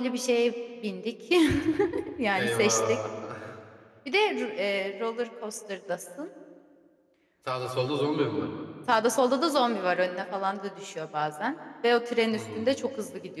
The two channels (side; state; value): both; identical; correlation 1.00